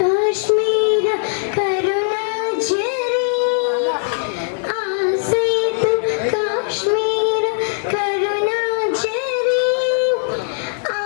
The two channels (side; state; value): right; silent; digital silence